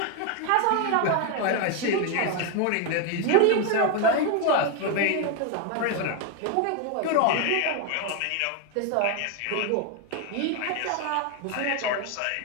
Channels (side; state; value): both; different; correlation 0.01